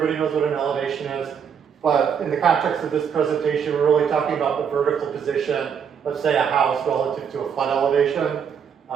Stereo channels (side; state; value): left; quieter; 7.4 dB